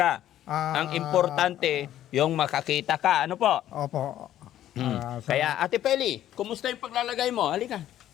Ang importante, yung makakita ka. Ano po? Opo. Kaya, Ate Peli, kumusta yung paglalagay mo? Halika.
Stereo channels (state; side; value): quieter; right; 12.2 dB